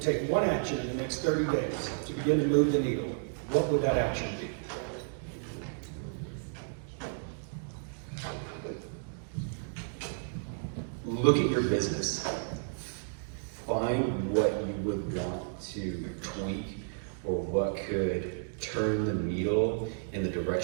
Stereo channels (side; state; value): left; silent; digital silence